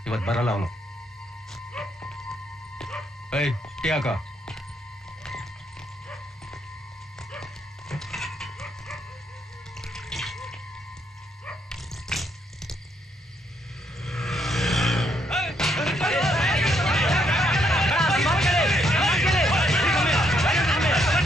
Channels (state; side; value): normal; both; correlation 0.74